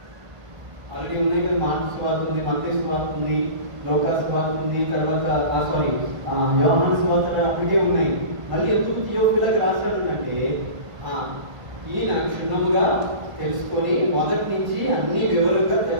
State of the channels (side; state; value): left; late; 1.5 ms